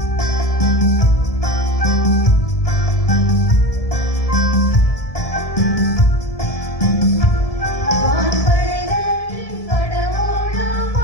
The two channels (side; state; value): right; late; 1.7 ms